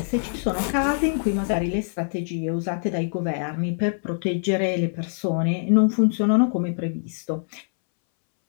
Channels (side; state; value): right; silent; 63 dB below the other